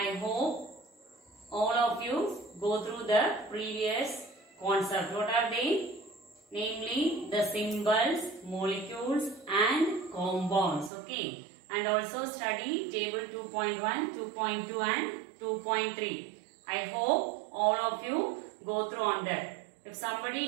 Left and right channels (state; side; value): drops out; left; at 10.9 s